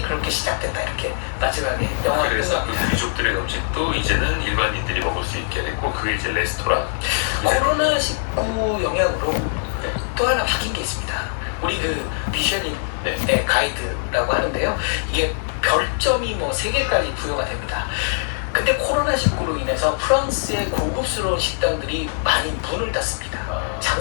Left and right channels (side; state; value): right; silent; digital silence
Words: 그렇게 시작됐다. 이렇게 마지막에 영화가 그래서 그 끝납니다. 귀족들의 음식도 이제는 일반인들이 먹을 수 있게 됐고 그게 이제 레스토랑. 코로나19 영향으로 또 하나 바뀐 게 있습니다. 우리 그 미쉐린의 네. 가이드라고 하는데요. 이게 별점이 뭐 3개까지 부여가 됩니다. 근데 코로나19로 인해서 프랑스의 고급스러운 식당들이 많이 문을 닫습니다.